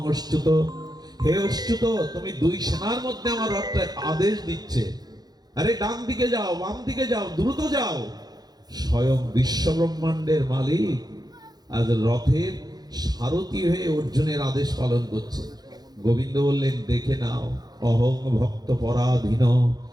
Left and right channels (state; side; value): late; left; 0.19 ms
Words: অচ্যুত। হে অচ্যুত, তুমি দুই সেনার মধ্যে আমার রথটা আদেশ দিচ্ছে, আরে ডান দিকে যাও, বাম দিকে যাও, দ্রুত যাও। স্বয়ং বিশ্ব ব্রহ্মাণ্ডের মালিক আজ রথের সারথি হয়ে অর্জুনের আদেশ পালন করছে। গোবিন্দ বললেন, দেখে নাও, অহং ভক্ত পরাধীন,